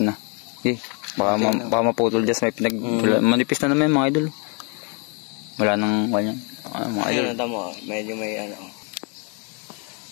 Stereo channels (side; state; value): right; quieter; 35.9 dB